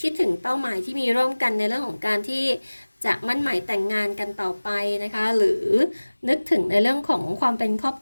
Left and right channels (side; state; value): both; inverted; correlation -1.00